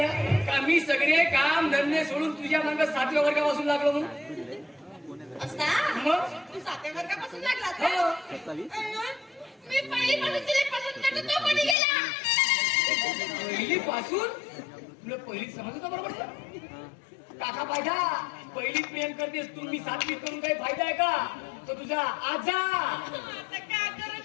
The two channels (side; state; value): right; drops out; at 11.8 s